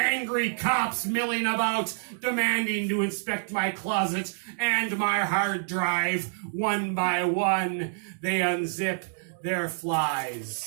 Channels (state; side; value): silent; left; digital silence